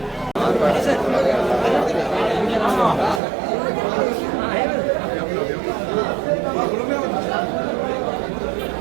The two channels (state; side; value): drops out; left; at 3.2 s